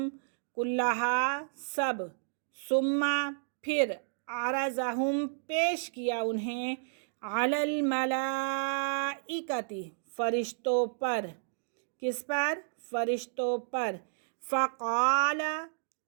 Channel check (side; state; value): left; silent; digital silence